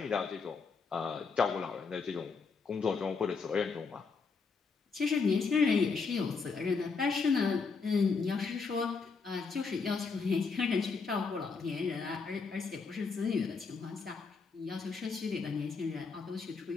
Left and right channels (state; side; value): quieter; right; 4.9 dB